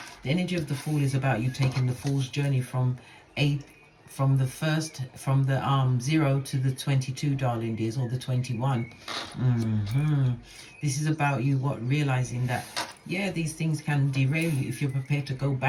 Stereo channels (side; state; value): both; identical; correlation 1.00